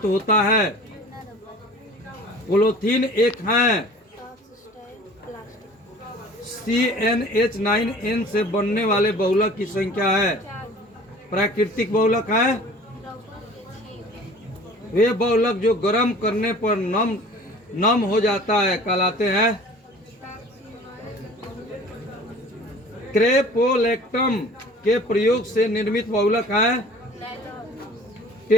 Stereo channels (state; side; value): normal; both; correlation 0.46